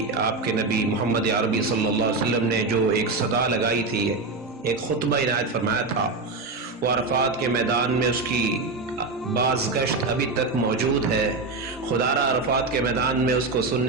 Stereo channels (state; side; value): quieter; left; 3.7 dB